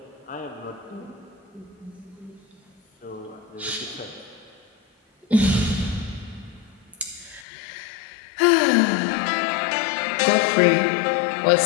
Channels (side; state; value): right; drops out; at 7.5 s